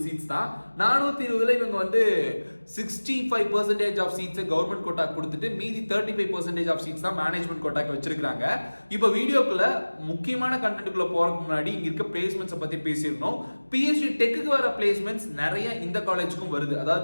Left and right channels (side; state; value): both; inverted; correlation -1.00